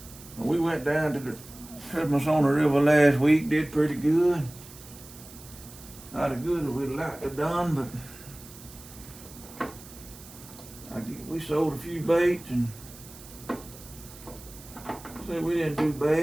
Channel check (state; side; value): noise; right; hiss, 18 dB below the sound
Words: We went down to the Christmas on the River last week, did pretty good. Not as good as we'd like to have done, but we sold a few baits and said we didn't do